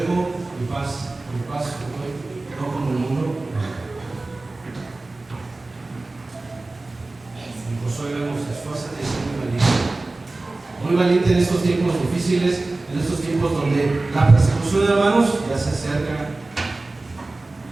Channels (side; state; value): left; quieter; 3.2 dB